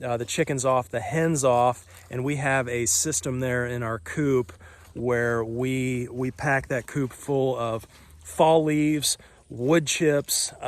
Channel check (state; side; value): identical; both; correlation 1.00